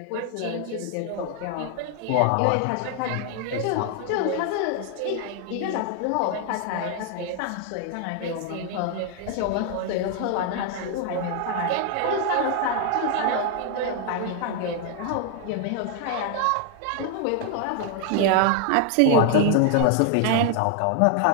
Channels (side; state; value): both; different; correlation 0.00